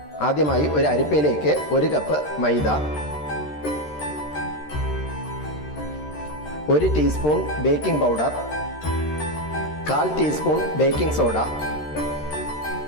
ആദ്യമായി ഒരു അരിപ്പയിലേക്ക് 1 cup maida, 1 teaspoon baking powder, 1/4 teaspoon baking soda,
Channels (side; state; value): right; late; 13 ms